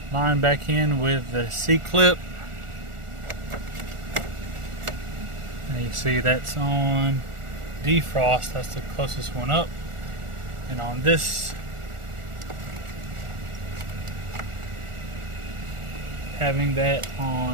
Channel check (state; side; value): late; left; 1.4 ms